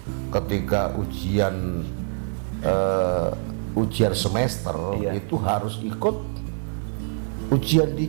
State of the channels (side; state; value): left; silent; 62 dB below the other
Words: ketika ujian semester Iya. itu harus ikut ujian